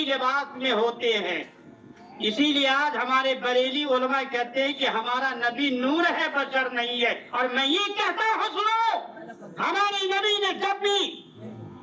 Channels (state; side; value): identical; both; correlation 1.00